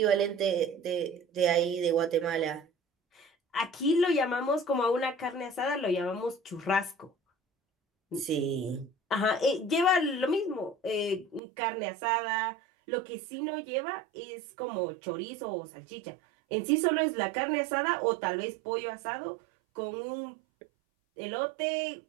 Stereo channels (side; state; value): left; drops out; at 11.4 s